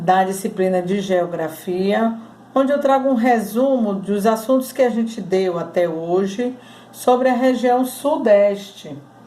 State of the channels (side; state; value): both; identical; correlation 1.00